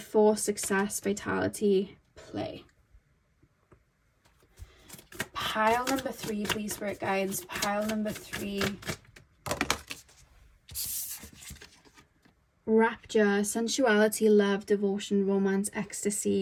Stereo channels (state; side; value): identical; both; correlation 1.00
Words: force, success, vitality, play. Pile number 3, please, Spirit Guides. Pile number 3. Rapture, sensuality, love, devotion, romance,